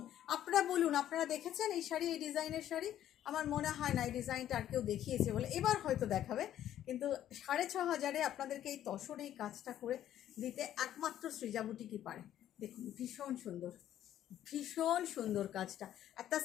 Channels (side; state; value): right; quieter; 11.6 dB